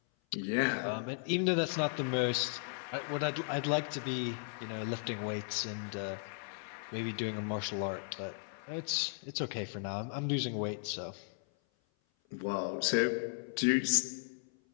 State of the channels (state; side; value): silent; right; 54 dB below the other